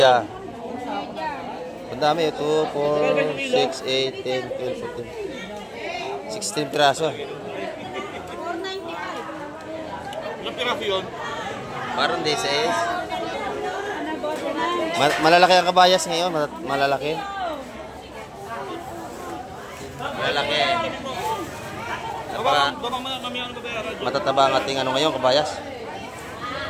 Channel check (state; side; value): identical; both; correlation 1.00